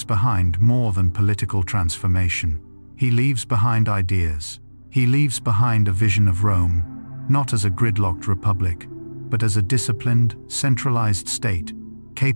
behind more than political transformation. He leaves behind ideas. He leaves behind a vision of Rome, not as a gridlocked republic, but as a disciplined, centralized state,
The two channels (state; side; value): inverted; both; correlation -1.00